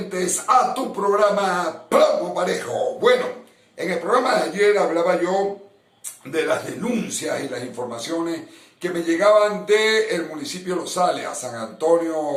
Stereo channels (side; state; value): both; identical; correlation 1.00